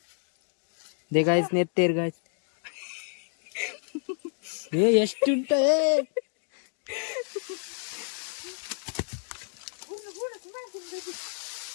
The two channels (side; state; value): right; silent; digital silence